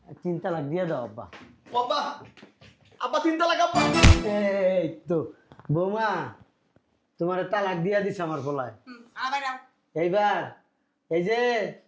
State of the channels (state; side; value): identical; both; correlation 1.00